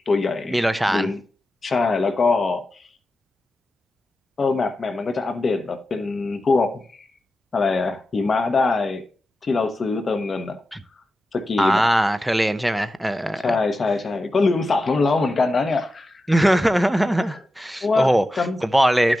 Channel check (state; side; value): normal; both; correlation 0.91